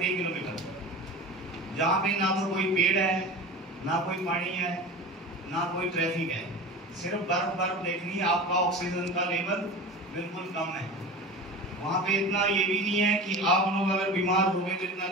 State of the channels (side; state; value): both; normal; correlation 0.32